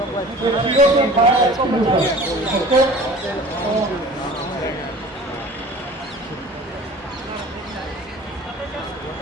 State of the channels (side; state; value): both; normal; correlation 0.43